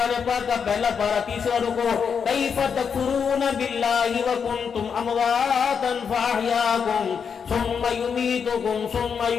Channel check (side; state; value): right; quieter; 6.6 dB